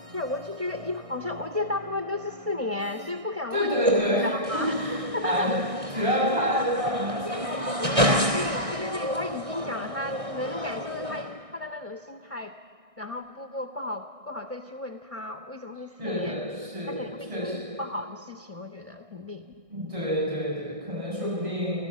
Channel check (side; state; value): left; late; 1.6 ms